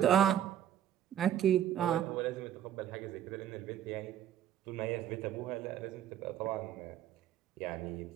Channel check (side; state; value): left; quieter; 10.6 dB